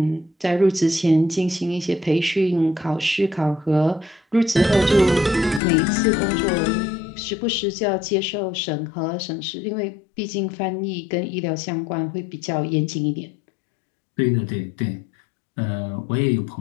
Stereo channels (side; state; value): right; drops out; at 5.6 s